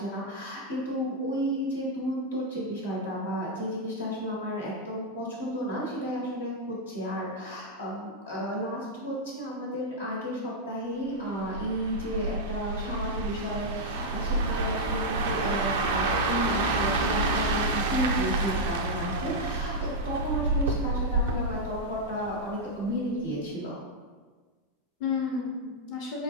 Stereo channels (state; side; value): normal; both; correlation -0.04